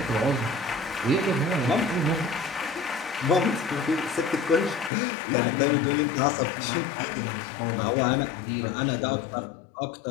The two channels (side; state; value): right; drops out; at 4.9 s